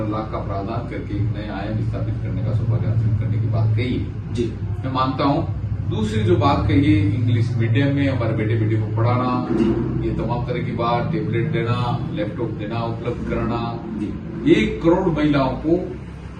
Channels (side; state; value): both; identical; correlation 1.00